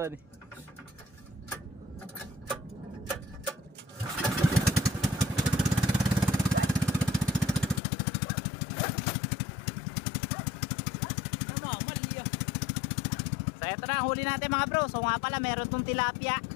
Namamaliya. So eto na, huli natin mga bro. So nga pala, meron tong tilapia.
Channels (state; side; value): drops out; right; at 7.8 s